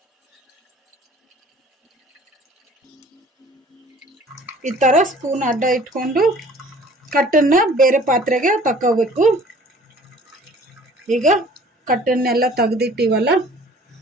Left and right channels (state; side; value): normal; both; correlation 0.51